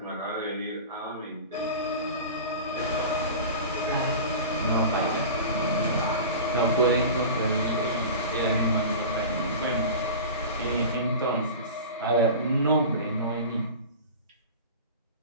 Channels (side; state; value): both; inverted; correlation -0.33